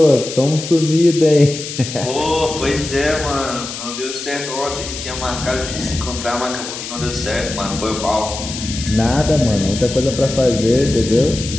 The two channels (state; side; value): noise; left; hiss, 8 dB below the sound